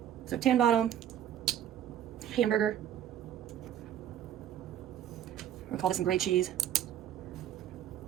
So tan bottom, hamburger. We'll call this some grade cheese.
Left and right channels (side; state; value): left; quieter; 10.5 dB